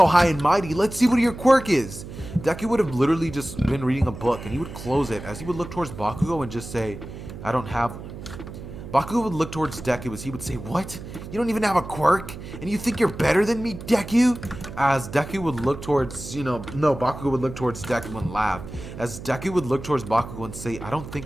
high and mighty, let's see what your quirk is. Deku would have literally just been reading a book, and he would close it as he would look towards Bakugo and just say, I don't have one. Bakugo would look towards Deku as he would say, what? You don't even have a quirk? And you think you're better than me, Deku? As Deku would look towards, Bakugo would look towards Deku and laugh. As Deku would look towards Bakugo and say, I don't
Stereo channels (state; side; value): noise; right; hum, 12 dB below the sound